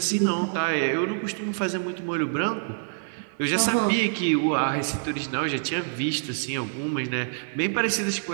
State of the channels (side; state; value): left; silent; digital silence